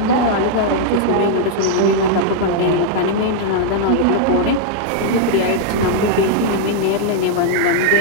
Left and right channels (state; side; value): different; both; correlation -0.01